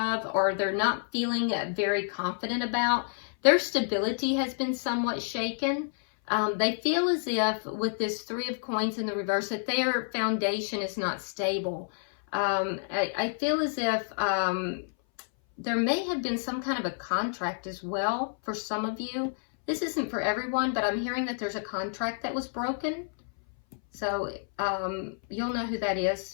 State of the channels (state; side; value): silent; right; 58 dB below the other